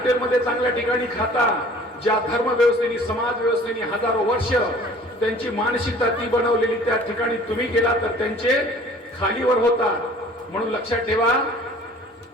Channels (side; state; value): both; normal; correlation 0.50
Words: चांगल्या ठिकाणी खाता. ज्या धर्म व्यवस्थेने समाज व्यवस्थेने हजारो वर्ष त्यांची मानसिकता ती बनवलेली त्या ठिकाणी तुम्ही गेला तर त्यांचे खालीवर होता. म्हणून लक्षात ठेवा,